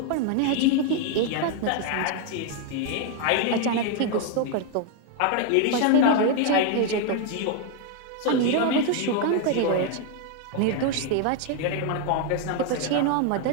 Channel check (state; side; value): different; both; correlation 0.01